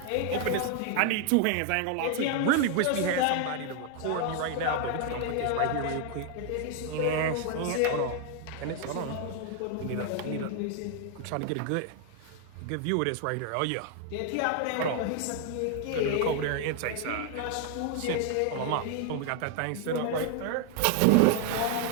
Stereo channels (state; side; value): different; both; correlation 0.00